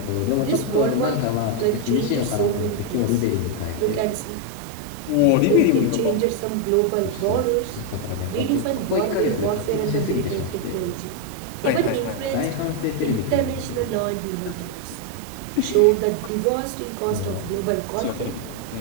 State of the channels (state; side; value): different; both; correlation 0.01